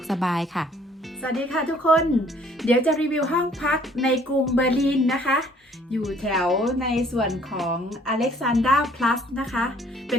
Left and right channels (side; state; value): both; normal; correlation 0.59